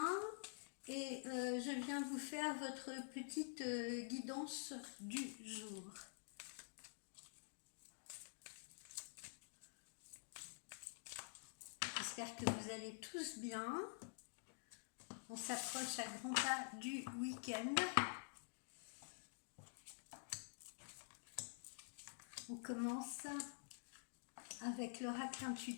et je viens vous faire votre petite guidance du jour. J'espère que vous allez tous bien. On s'approche à grands pas du week-end. On commence avec l'oracle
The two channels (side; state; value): right; silent; digital silence